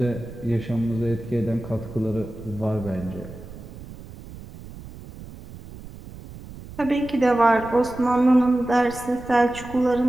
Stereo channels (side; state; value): right; noise; rumble, 15 dB below the sound